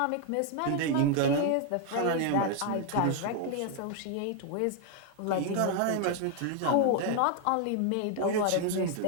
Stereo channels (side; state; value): both; different; correlation 0.00